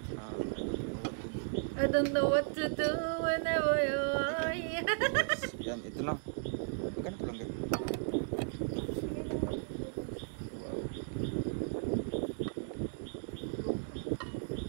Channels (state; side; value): silent; left; digital silence